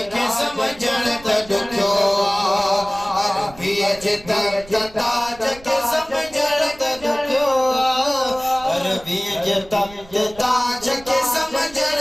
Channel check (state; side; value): noise; right; rumble, 21 dB below the sound